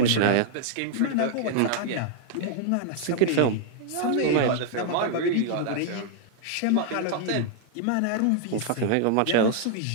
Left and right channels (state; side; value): different; both; correlation -0.01